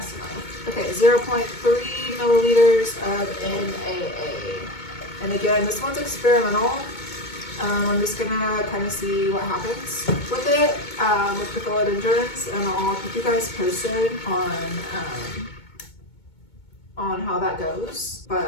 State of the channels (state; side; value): late; right; 2.2 ms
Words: enough. Okay, 0.3 milliliters of NAA. And again, this one's experimental. I'm just gonna kind of see what happens with it, with the philodendrons, and I'll keep you guys posted on how that goes.